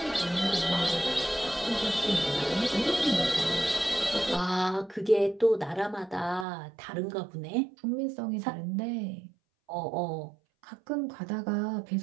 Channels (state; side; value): drops out; left; at 6.5 s